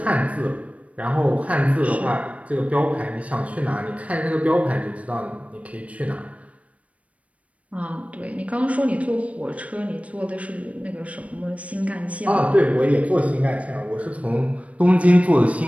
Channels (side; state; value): left; late; 0.066 ms